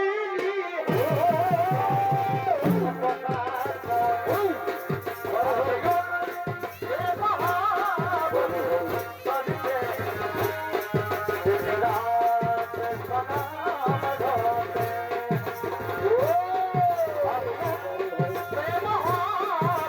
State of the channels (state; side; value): identical; both; correlation 1.00